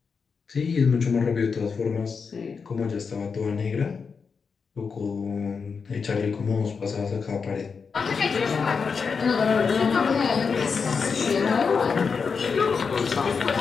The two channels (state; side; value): quieter; right; 5.5 dB